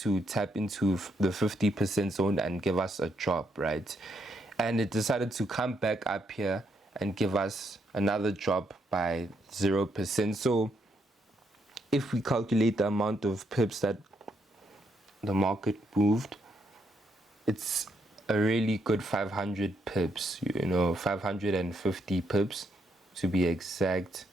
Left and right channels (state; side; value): normal; both; correlation 0.76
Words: tap into the 50% zone and give us a drop, right? And it decided to come back up here and give us another drop by 0%. So if we calculate the amount of pips that the market moved, it's a really good 500 pips, 550 pips. to be exact,